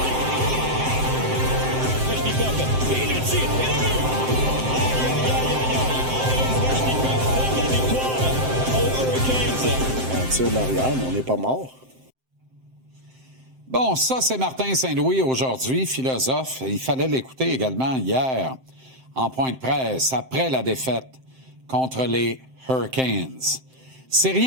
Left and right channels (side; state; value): left; late; 7.7 ms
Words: Svechnikov, et le tir, et le but! Aïe, aïe, aïe, aïe, aïe! Svechnikov donne la victoire aux Hurricanes. On tire de l'arrière, mais on n'est pas mort. Bon, ça, c'est Martin Saint-Louis aujourd'hui, philosophe. Il fallait l'écouter également hier, en point de presse, après la défaite contre les Hurricanes. C'est